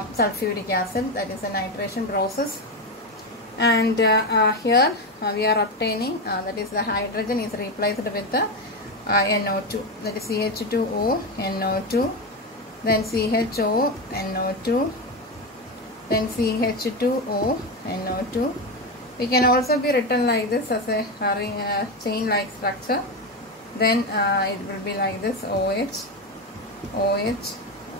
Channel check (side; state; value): both; normal; correlation 0.14